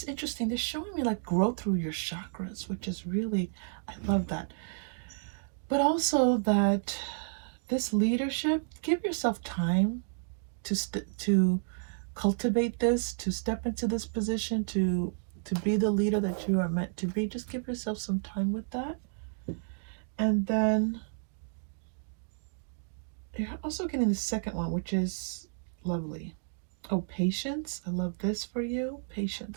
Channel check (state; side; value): silent; left; digital silence